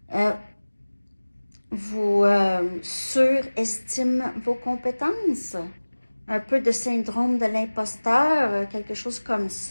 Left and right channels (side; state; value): both; inverted; correlation -1.00